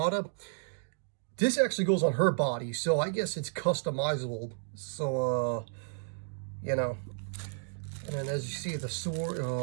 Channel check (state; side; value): silent; left; digital silence